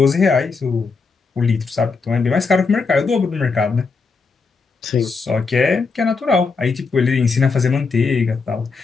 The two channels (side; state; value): right; quieter; 4.6 dB